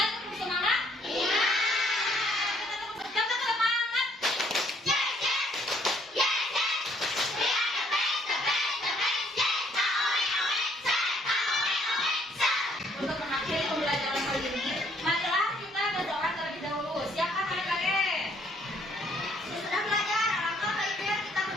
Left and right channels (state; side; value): normal; both; correlation 0.65